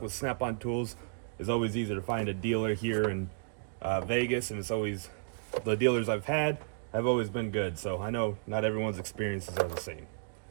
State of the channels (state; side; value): silent; left; digital silence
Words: with Snap-on tools. It's always easy to find a dealer here in Vegas, and it's always the dealers I've had have always been good. So I know not everyone's experiences are the same.